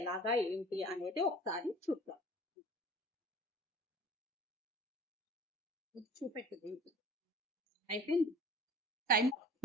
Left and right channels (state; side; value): normal; both; correlation 0.45